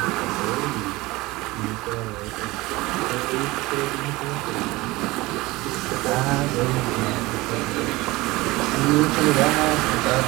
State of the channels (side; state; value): left; quieter; 20.9 dB